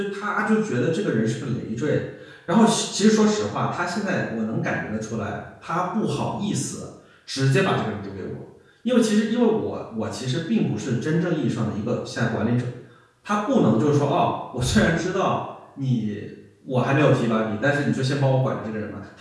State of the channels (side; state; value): both; identical; correlation 1.00